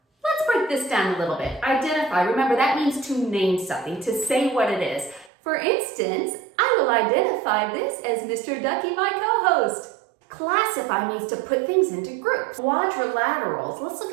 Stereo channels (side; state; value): left; drops out; at 5.3 s